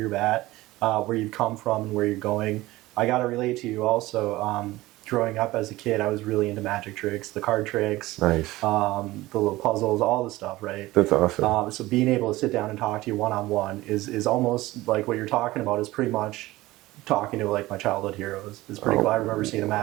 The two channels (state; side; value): quieter; left; 18.3 dB